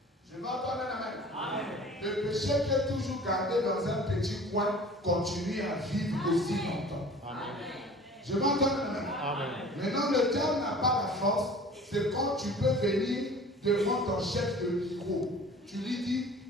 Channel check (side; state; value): both; normal; correlation 0.44